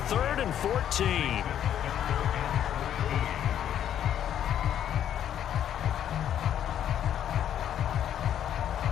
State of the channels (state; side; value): quieter; right; 10.2 dB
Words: 3rd and 14.